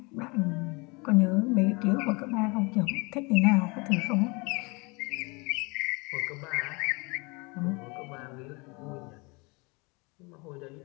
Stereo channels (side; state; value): right; quieter; 27.9 dB